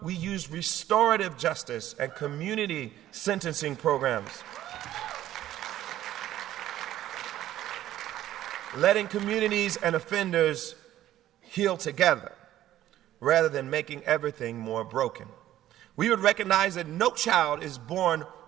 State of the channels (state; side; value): quieter; left; 13.2 dB